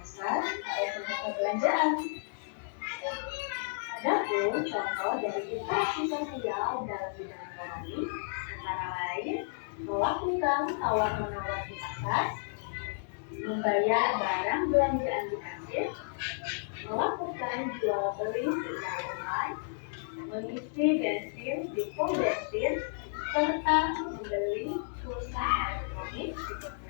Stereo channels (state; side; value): silent; right; digital silence